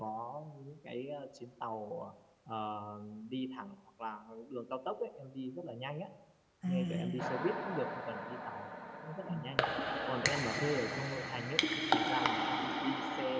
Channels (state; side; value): identical; both; correlation 1.00